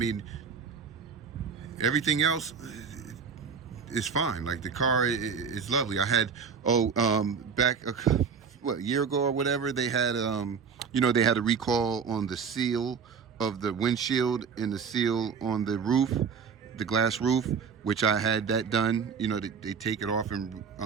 everything else is fine. The car is lovely. I had back a year ago or whatever, they had they had a recall on the seal of the windshield and the seal on the roof, the glass roof, which I had that done. They take it off and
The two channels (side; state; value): left; quieter; 6.2 dB